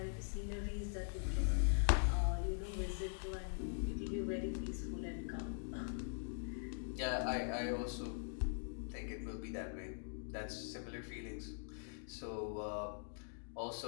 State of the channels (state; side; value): silent; right; digital silence